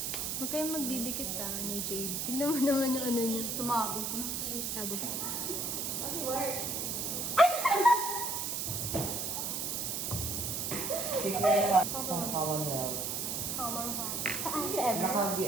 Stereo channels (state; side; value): noise; right; hiss, 1 dB below the sound